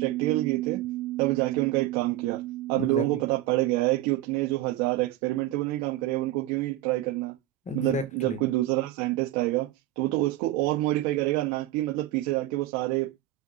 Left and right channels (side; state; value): left; quieter; 14.7 dB